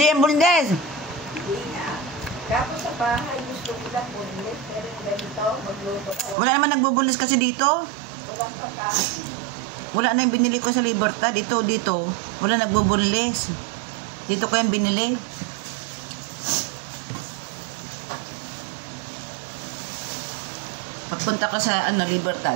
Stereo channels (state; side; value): drops out; left; at 6.4 s